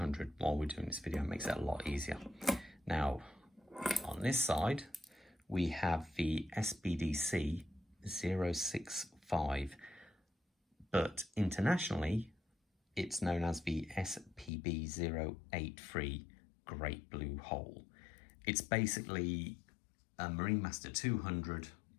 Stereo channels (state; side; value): drops out; right; at 14.5 s